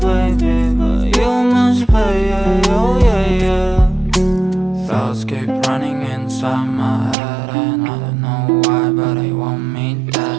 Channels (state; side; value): drops out; left; at 7.2 s